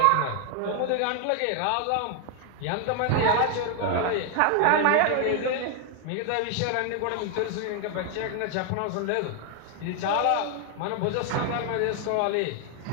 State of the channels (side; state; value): both; different; correlation 0.00